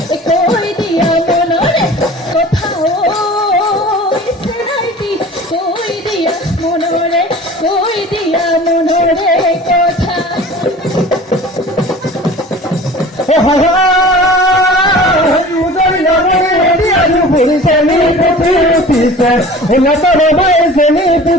কই দিয়া মনরে কথা ঐ সেনাইটি কই দিয়া মনরে কথা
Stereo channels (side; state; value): both; normal; correlation 0.42